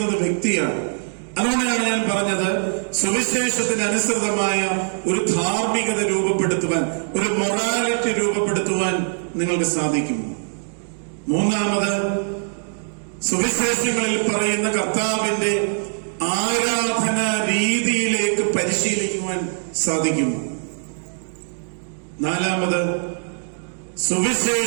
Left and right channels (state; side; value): silent; left; digital silence